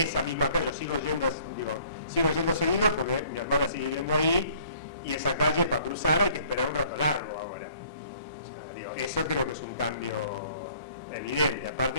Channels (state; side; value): inverted; both; correlation -0.57